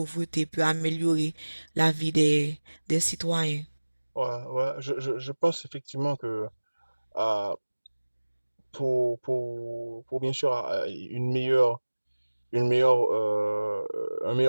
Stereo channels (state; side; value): inverted; both; correlation -1.00